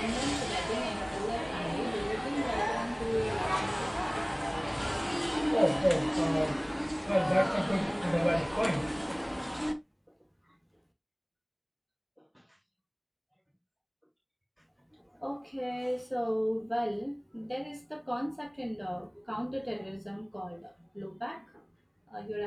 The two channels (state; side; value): identical; both; correlation 1.00